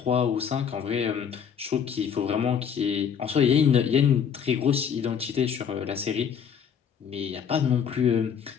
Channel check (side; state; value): right; quieter; 7.6 dB